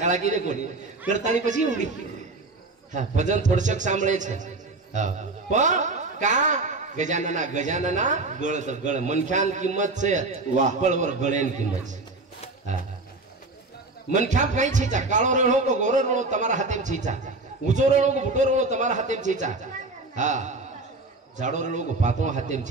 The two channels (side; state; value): left; quieter; 3.4 dB